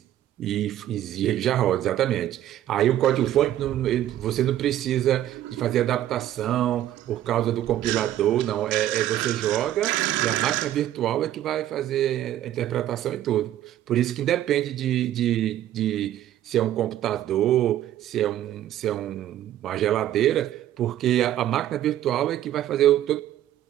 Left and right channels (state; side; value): quieter; left; 12.4 dB